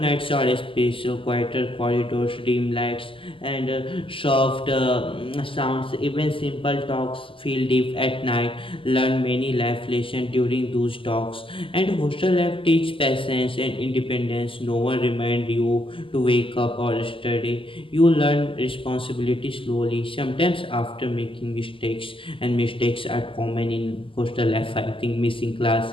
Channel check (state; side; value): late; right; 0.25 ms